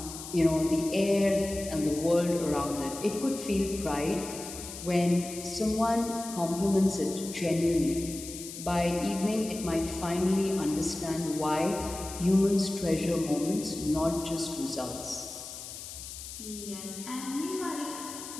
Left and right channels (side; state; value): left; noise; hiss, 11 dB below the sound